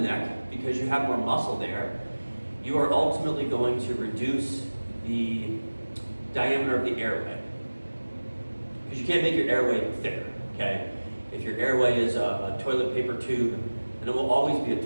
neck because you have more muscle there, you are ultimately going to reduce the diameter of the airway. Because you can't make your airway thicker, okay? If your airway is a toilet paper tube, then it will always be a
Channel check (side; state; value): both; inverted; correlation -1.00